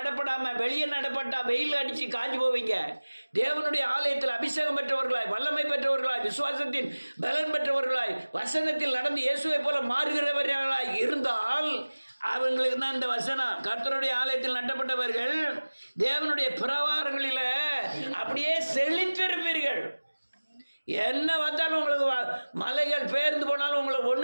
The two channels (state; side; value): inverted; both; correlation -1.00